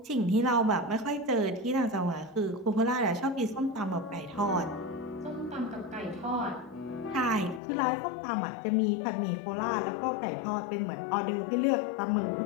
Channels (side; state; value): right; drops out; at 7.6 s